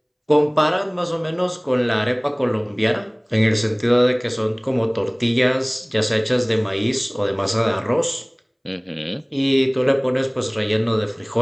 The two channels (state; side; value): identical; both; correlation 1.00